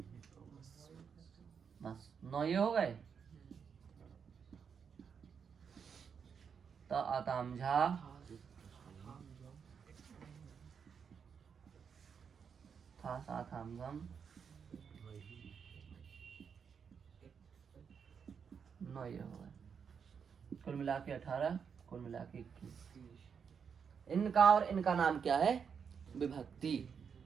बस 9 ये हो गए। त आतामझा, था साथामझम, 9 ये हो गए। कुल मिला के 18, कुल मिला के 21। इनका और इनका नाम क्या है, विभक्ति।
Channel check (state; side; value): quieter; left; 6.7 dB